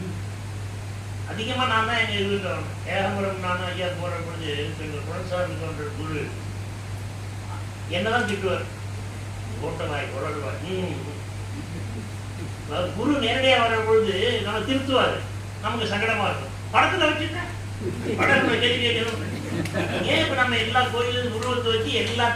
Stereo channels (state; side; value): identical; both; correlation 1.00